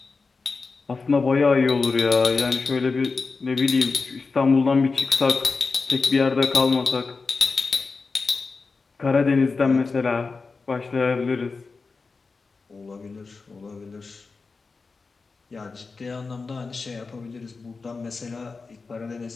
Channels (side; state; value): right; quieter; 4.3 dB